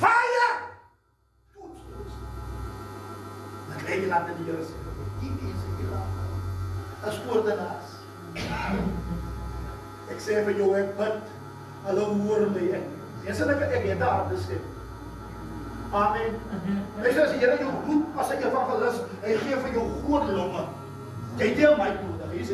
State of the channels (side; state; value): both; identical; correlation 1.00